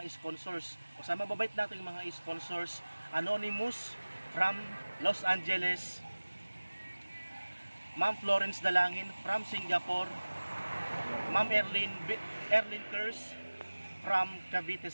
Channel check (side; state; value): both; inverted; correlation -1.00